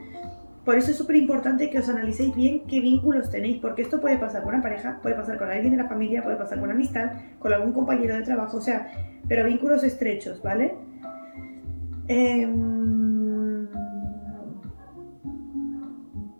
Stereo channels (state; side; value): inverted; both; correlation -1.00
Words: Por eso es súper importante que os analicéis bien qué vínculos tenéis, porque esto puede pasar con una pareja, puede pasar con alguien de la familia, puede pasar con una amistad, con algún compañero de trabajo, o sea, pero vínculos estrechos, ¿vale?